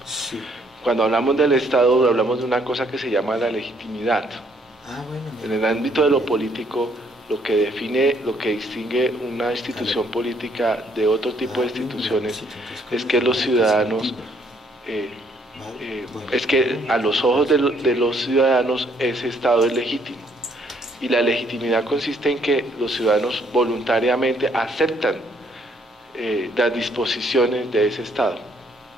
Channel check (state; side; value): normal; both; correlation 0.67